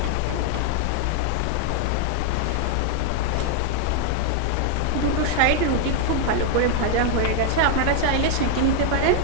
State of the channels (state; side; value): different; both; correlation 0.00